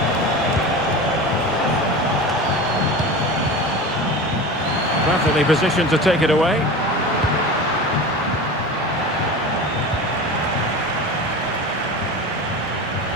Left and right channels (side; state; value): both; normal; correlation 0.31